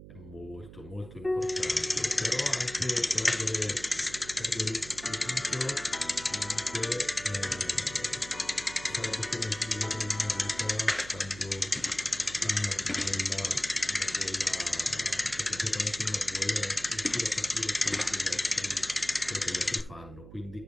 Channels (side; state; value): right; noise; hum, 16 dB below the sound